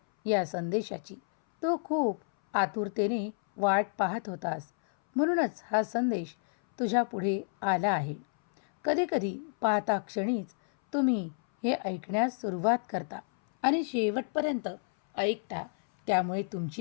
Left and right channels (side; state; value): right; silent; 58 dB below the other